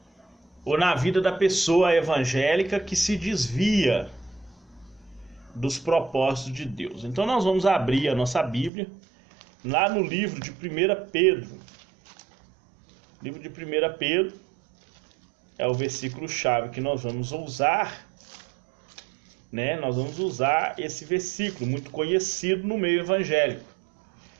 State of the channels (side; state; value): left; drops out; at 8.7 s